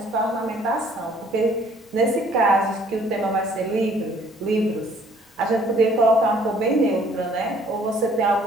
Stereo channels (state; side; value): normal; both; correlation 0.59